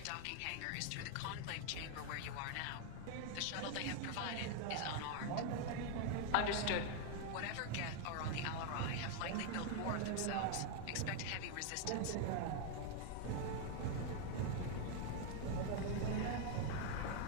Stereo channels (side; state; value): both; different; correlation 0.01